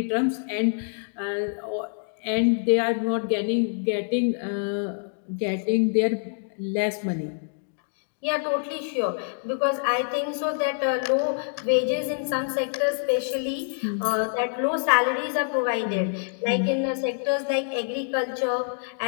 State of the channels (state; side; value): silent; right; digital silence